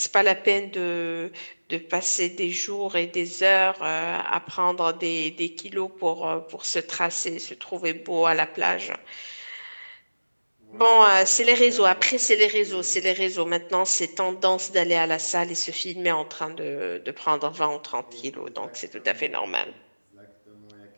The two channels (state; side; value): inverted; both; correlation -1.00